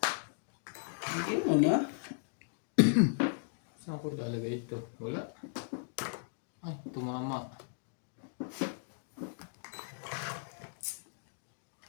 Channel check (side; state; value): right; silent; digital silence